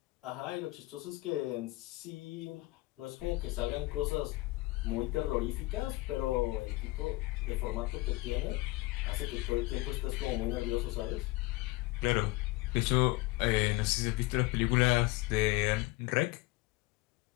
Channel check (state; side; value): quieter; right; 21.1 dB